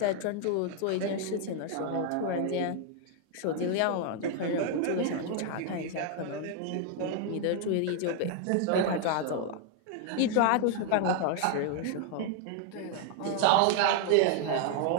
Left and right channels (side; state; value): both; different; correlation 0.00